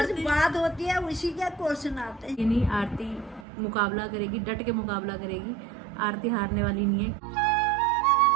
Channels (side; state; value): left; drops out; at 3.5 s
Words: बात होती है उसी के क्वेश्चन आते हैं। नहीं, आरती मुकाबला करेगी, डट के मुकाबला करेगी। आरती हारने वाली नहीं है।